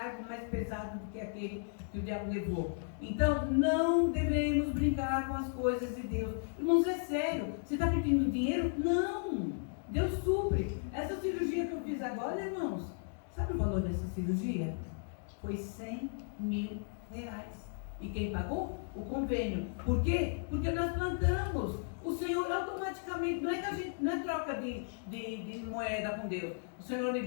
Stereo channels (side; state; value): right; silent; digital silence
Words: mais pesado do que aquele que o diabo levou. Então, não devemos brincar com as coisas de Deus. Irmãos, é sério. Você está pedindo dinheiro? Não! Deus supre. Essa cirurgia que eu fiz agora, irmãos, sabe o valor dessa cirurgia? Foi R$100.000. E quem pagou? O convênio. Por quê? Porque nós plantamos. O Senhor automaticamente, não é troca de moeda com Deus. O Senhor me